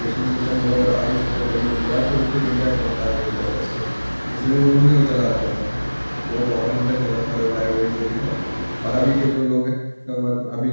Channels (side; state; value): both; inverted; correlation -1.00